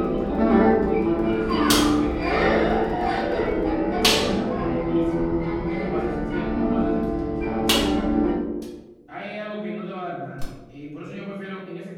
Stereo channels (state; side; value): identical; both; correlation 1.00